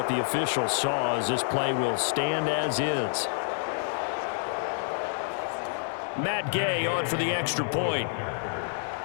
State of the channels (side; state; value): right; silent; digital silence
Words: the official saw, as this play will stand as is. Matt Gay on for the extra point.